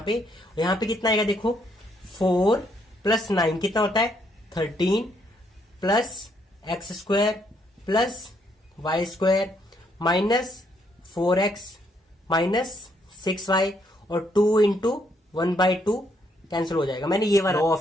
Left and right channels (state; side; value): normal; both; correlation 0.72